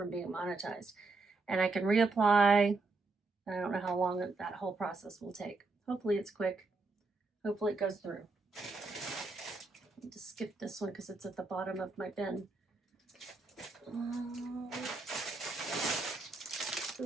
being monetized. And I can reapply. I don't know how long that whole process will take. Hopefully it's quick. Hopefully it goes through. I need to skip this one because it's at the bottom of my bin.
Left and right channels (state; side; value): quieter; left; 3.6 dB